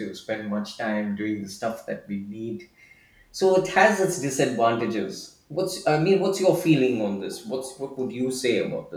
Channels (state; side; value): identical; both; correlation 1.00